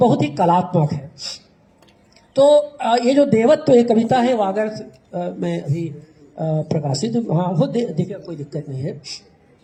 ही कलात्मक है। तो ये जो देवत्व एक कविता है, वो अगर मैं अभी प्रकाशित, हाँ वो देखिए, कोई दिक्कत नहीं है।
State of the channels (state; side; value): identical; both; correlation 1.00